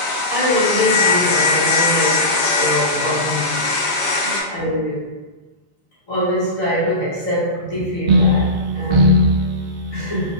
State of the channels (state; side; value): late; right; 4.2 ms